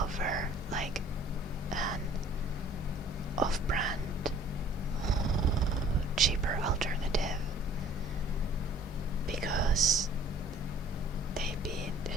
like an off-brand cheaper alternative, because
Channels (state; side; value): normal; both; correlation 0.53